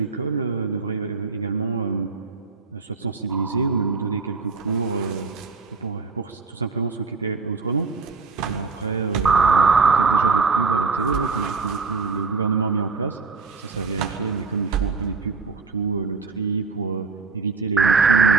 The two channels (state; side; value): quieter; left; 4.5 dB